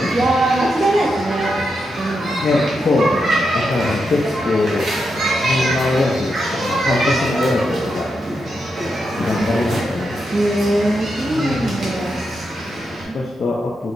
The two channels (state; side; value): normal; both; correlation 0.85